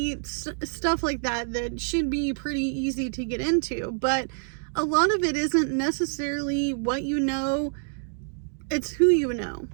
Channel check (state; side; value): silent; left; 60 dB below the other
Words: stuff like that, that should be pretty easy to get into. But a lot of it isn't necessarily what you know, it's who you know.